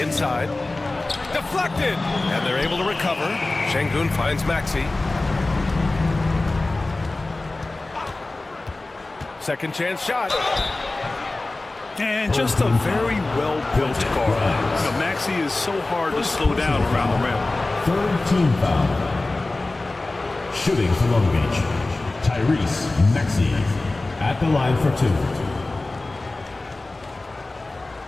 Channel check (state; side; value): quieter; right; 3.0 dB